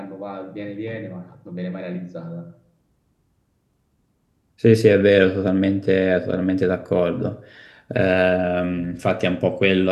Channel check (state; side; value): identical; both; correlation 1.00